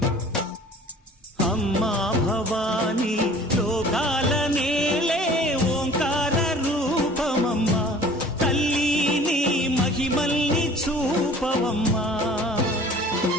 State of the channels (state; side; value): normal; both; correlation 0.48